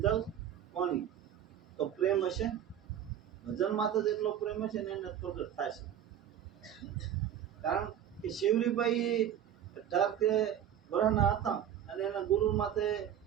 જલ પાણી. તો પ્રેમ હશે ભજન માથે જ એટલો પ્રેમ હશે ને એને પ્રગટ થાય છે. કારણ કે શિવરીભાઈ 18 વર્ષના હતા અને એના ગુરુ માથે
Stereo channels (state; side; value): quieter; left; 10.1 dB